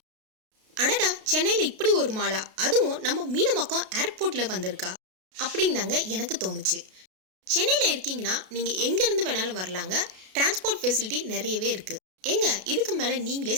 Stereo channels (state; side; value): late; left; 32 ms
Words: அடடா, சென்னையில் இப்படி ஒரு மாலா, அதுவும் நம்ம மீனம்பாக்கம் ஏர்போர்ட்டில் வந்திருக்கா அப்படின்னு தாங்க எனக்கு தோணுச்சு. சென்னையில் இருக்கீங்கன்னா நீங்கள் எங்கேருந்து வேணாலும் வரலாங்க. டிரான்ஸ்போர்ட் ஃபெசிலிட்டி நிறையவே இருக்குது. எங்க இதுக்கு மேலே நீங்களே